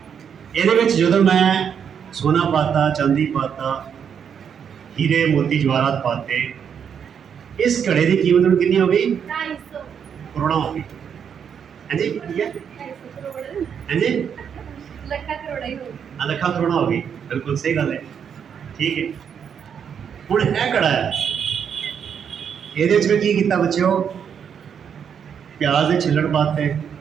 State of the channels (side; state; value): left; quieter; 7.7 dB